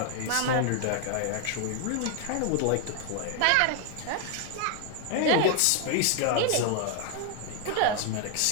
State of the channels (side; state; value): both; different; correlation 0.00